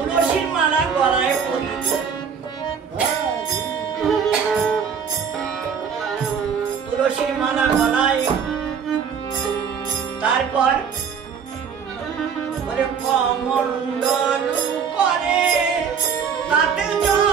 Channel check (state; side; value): quieter; left; 6.8 dB